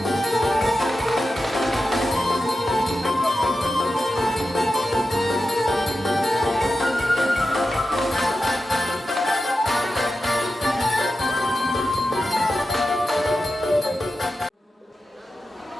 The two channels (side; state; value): both; normal; correlation 0.91